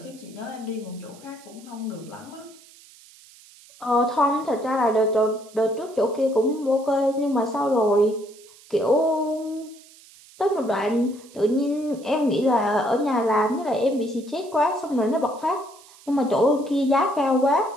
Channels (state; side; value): noise; right; hiss, 24 dB below the sound